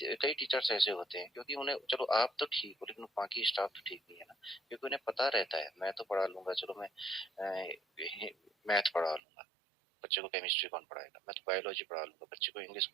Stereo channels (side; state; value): left; drops out; at 9.2 s